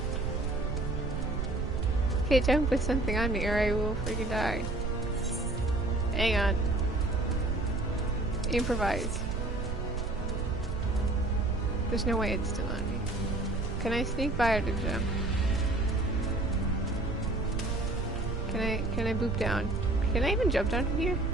Can't jump with something on me or I will freaking die. Hang on. Improvise. There's no way it's still on me. Can I sneak by or to jump? Can I boop down? Can I even jump down from here?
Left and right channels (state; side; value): noise; right; rumble, 3 dB below the sound